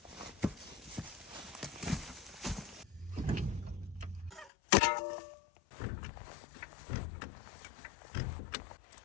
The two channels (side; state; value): right; drops out; at 4.5 s